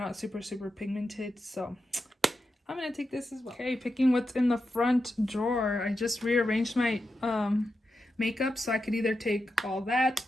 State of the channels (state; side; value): normal; both; correlation 0.88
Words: super, super pigmented, so I'm going to take this as well. Okay, picking what's in the front drawer. I just rearranged my makeup, so I could either take all that.